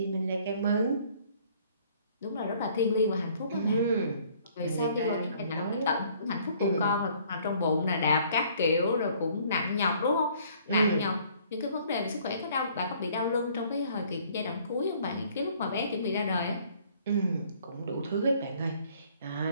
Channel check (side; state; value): both; inverted; correlation -0.59